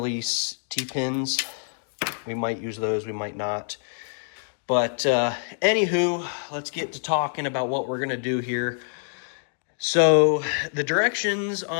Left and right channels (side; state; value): right; silent; 61 dB below the other